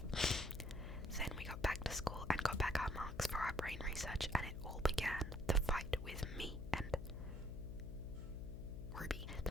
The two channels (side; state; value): left; noise; hum, 8 dB below the sound